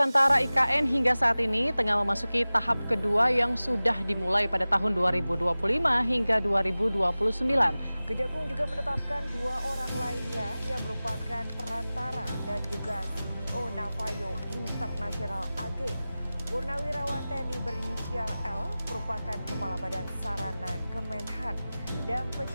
(IKN) hingga saat ini tengah memasuki tahap kedua yang sudah dimulai pada tahun 2025 hingga 2029. Kejagung juga menetapkan 2 orang lainnya yang merupakan perantara dan juga CEO Navayo International AG. Purnawirawan TNI berinisial L merupakan Kepala Badan Sarana Kemenhan dan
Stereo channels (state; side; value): inverted; both; correlation -0.97